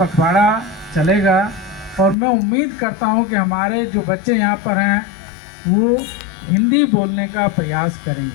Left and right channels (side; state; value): right; drops out; at 2.1 s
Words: चलेगा और मैं उम्मीद करता हूं कि हमारे जो बच्चे यहाँ पर हैं वो हिंदी बोलने का प्रयास